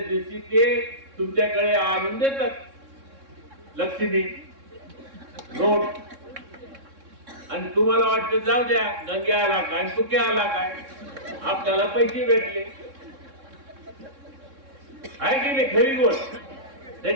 ते तुमच्याकडे आणून देतात लक्ष्मी नोट. आणि तुम्हाला वाटतं जाऊ द्या गंगे आला काय तुके आला काय, आपल्याला पैसे भेटले. आहे की नाही खरी गोष्ट?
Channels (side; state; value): left; late; 3.6 ms